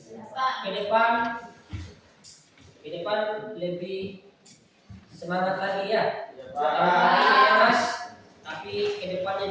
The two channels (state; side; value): identical; both; correlation 1.00